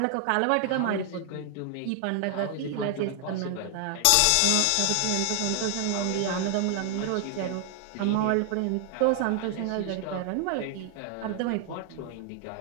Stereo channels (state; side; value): different; both; correlation 0.00